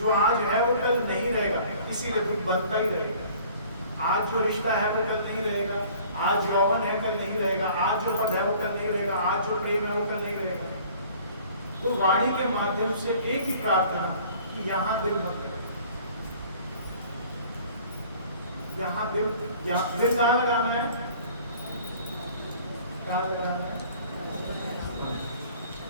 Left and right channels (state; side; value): inverted; both; correlation -0.51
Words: आज है वो कल नहीं रहेगा, इसीलिए दुख बनता ही रहेगा। आज जो रिश्ता है वो कल नहीं रहेगा, आज यौवन है कल नहीं रहेगा, आज जो पद है वो कल नहीं रहेगा, आज जो प्रेम है वो कल नहीं रहेगा। तो वाणी के माध्यम से एक ही प्रार्थना कि यहाँ दिल मत लगे, यहाँ दिल कहाँ लगाना है? कहाँ लगाना है?